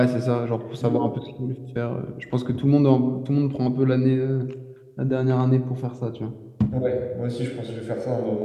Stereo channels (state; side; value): identical; both; correlation 1.00